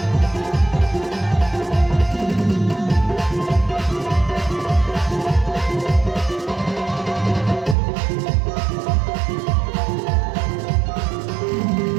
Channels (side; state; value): left; drops out; at 7.8 s